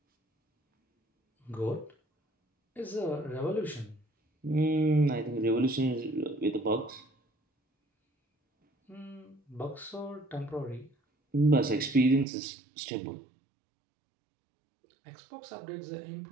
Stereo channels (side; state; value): left; drops out; at 12.2 s